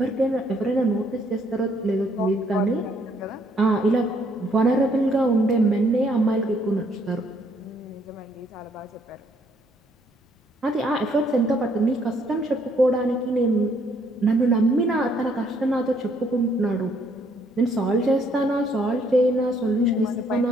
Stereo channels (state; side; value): normal; both; correlation 0.68